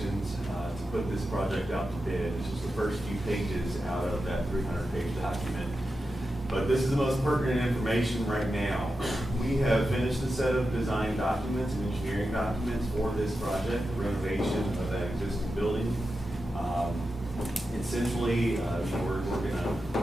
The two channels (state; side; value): normal; both; correlation 0.90